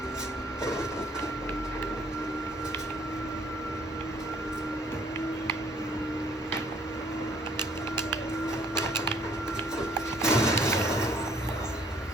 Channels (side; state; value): both; normal; correlation 0.60